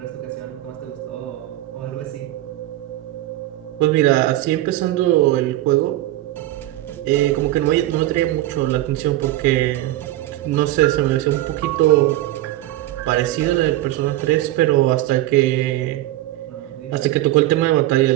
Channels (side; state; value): left; quieter; 15.5 dB